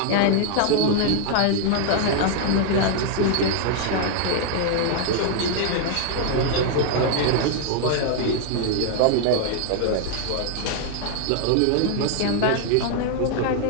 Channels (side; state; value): both; different; correlation 0.00